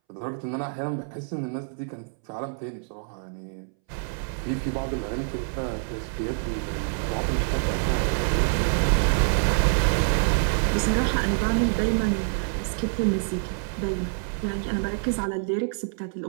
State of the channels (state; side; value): silent; left; 61 dB below the other